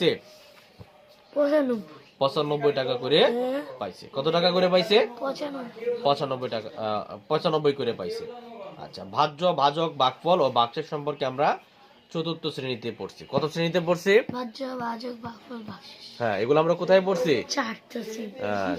95 টাকা করে পাইছে। কত টাকা করে পাইছে? 95 টাকা, 95 করে পাইছে। আচ্ছা, ভাজ্য, ভাজক, ভাগফল ও ভাগশেষ সম্পর্কে আমরা চতুর্থ শ্রেণীতে পড়ছি। কত শ্রেণীতে পড়ছি? হ্যাঁ, এগুলো আমরা কোথায় পড়ছি?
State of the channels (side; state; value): both; identical; correlation 1.00